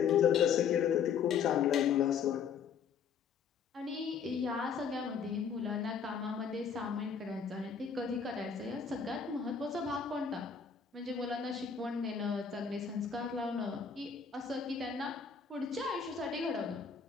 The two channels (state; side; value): quieter; right; 6.6 dB